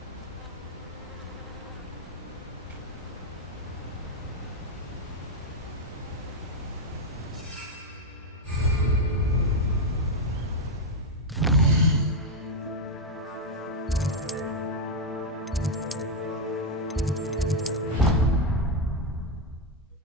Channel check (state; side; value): normal; both; correlation 0.03